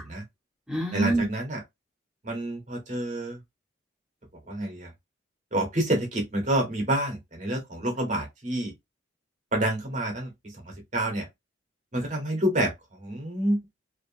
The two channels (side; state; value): both; normal; correlation 0.45